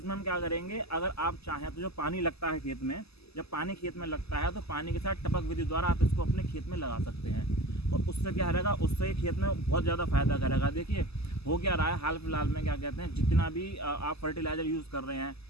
हम क्या करेंगे, अगर आप चाहें तो जो पानी लगता है खेत में, जब पानी खेत में लगता है तो पानी के साथ टपक विधि द्वारा आप इसको अपने खेत में लगा सकते हैं। और उससे क्या रहेगा, उससे खेत में बहुत ज़्यादा फायदा करेगा। देखिए हो क्या रहा है हाल फिलहाल में, क्या कहते हैं, जितना भी आप फर्टिलाइज़र यूज़ कर रहे हैं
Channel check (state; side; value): late; right; 0.79 ms